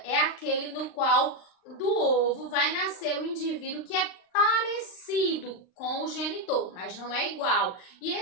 é aquele no qual do ovo vai nascer o indivíduo que é parecido com o genitor, mas não é igual. E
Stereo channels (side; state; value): right; late; 39 ms